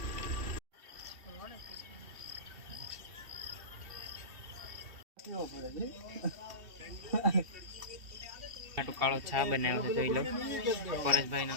કાળો છા બનાવ્યો છે જોઈ લો. પરેશભાઈ નો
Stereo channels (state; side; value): late; left; 3.0 ms